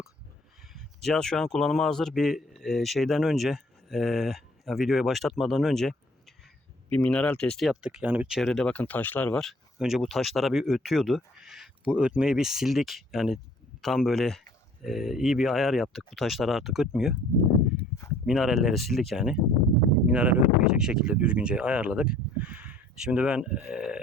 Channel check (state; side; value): normal; both; correlation 0.55